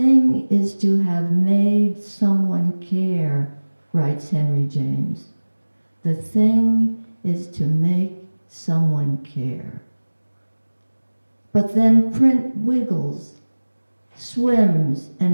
is to have made someone care, writes Henry James. The thing is to make someone care. But then print wiggles, swims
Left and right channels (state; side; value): inverted; both; correlation -1.00